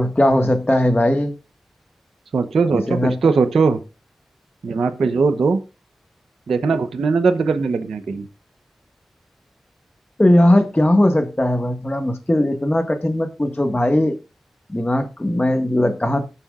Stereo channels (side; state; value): both; normal; correlation 0.93